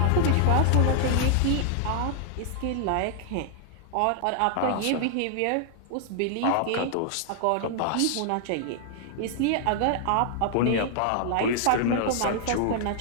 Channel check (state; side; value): different; both; correlation -0.01